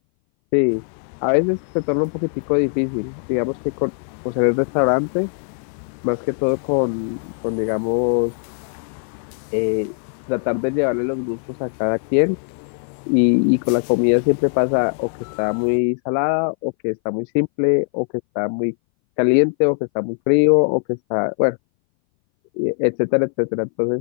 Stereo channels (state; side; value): silent; right; 60 dB below the other